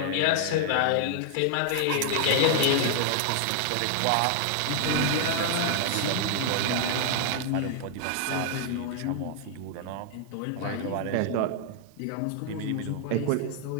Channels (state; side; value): different; both; correlation 0.00